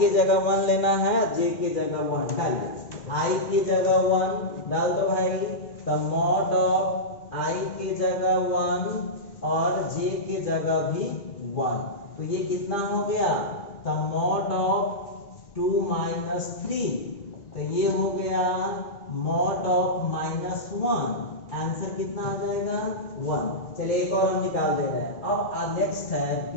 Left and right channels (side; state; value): right; late; 2.3 ms